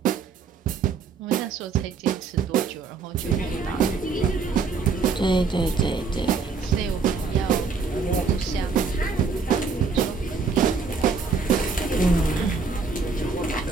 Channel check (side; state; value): left; quieter; 4.9 dB